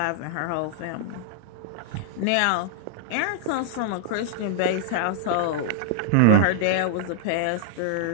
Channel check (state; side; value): different; both; correlation -0.01